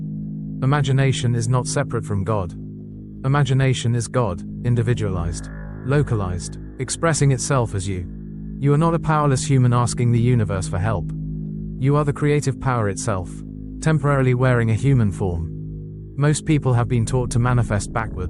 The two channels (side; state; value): both; identical; correlation 1.00